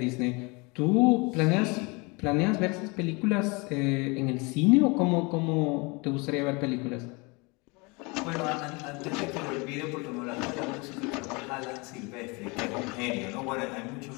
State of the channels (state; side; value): quieter; right; 28.1 dB